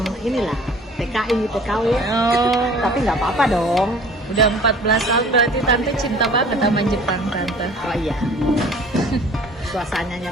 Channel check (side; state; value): both; normal; correlation 0.49